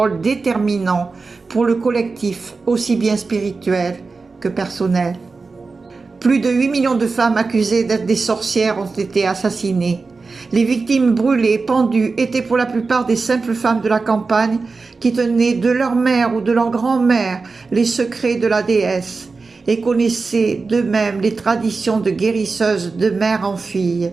déterminant pour le collectif, aussi bien spirituel que personnel. Plus de 8 millions de femmes accusées d'être des sorcières ont été assassinées. Les victimes brûlées, pendues, étaient pour la plupart des simples femmes de la campagne qui tenaient de leur mère ou de leur grand-mère les secrets de la déesse et connaissaient d'eux-mêmes les traditions de guérisseuses de mère en fille.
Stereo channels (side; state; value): left; quieter; 4.2 dB